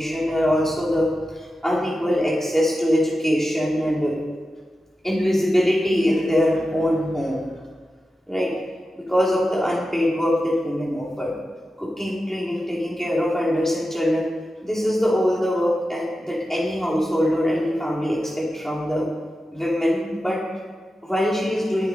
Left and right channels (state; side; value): normal; both; correlation 0.91